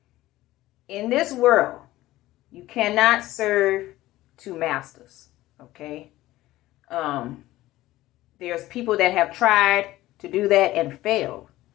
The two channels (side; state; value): right; quieter; 16.5 dB